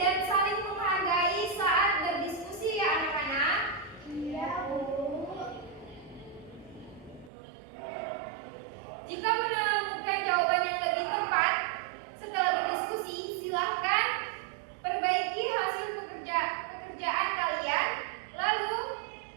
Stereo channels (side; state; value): left; drops out; at 7.3 s